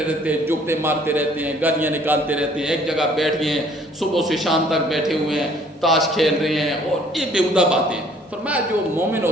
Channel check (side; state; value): both; normal; correlation 0.59